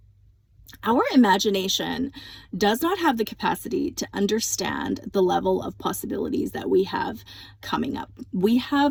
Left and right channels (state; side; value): identical; both; correlation 1.00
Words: Our imagination does not have the capacity to understand the level of possibilities that we have coming up. We